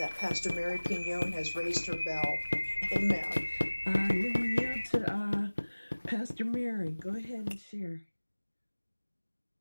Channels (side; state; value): both; inverted; correlation -1.00